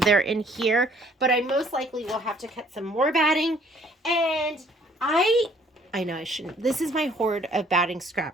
in here. But I most likely will have to cut some more batting. And I know I shouldn't. This is my hoard of batting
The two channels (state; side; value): normal; both; correlation 0.60